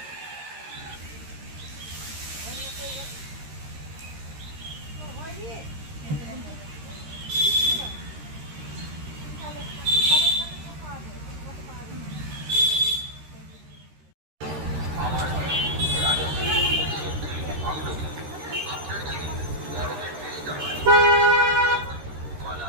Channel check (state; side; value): late; left; 13 ms